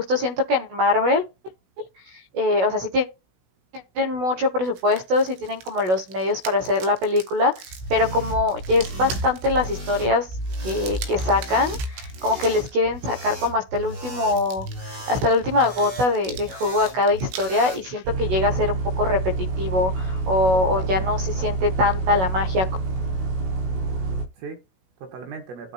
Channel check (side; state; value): left; late; 16 ms